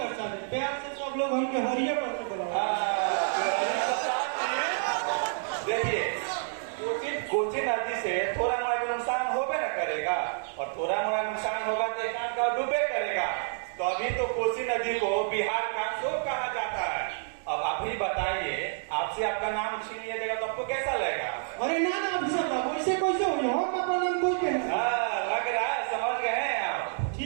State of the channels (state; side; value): silent; left; digital silence